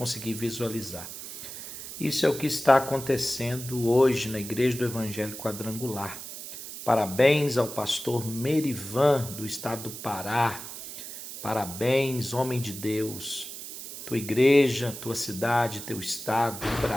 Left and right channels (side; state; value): right; noise; hiss, 10 dB below the sound